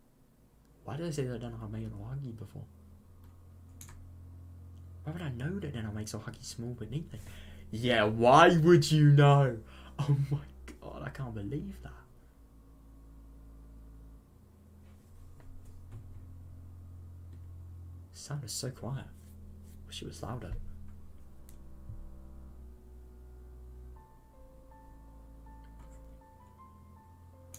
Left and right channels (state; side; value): identical; both; correlation 1.00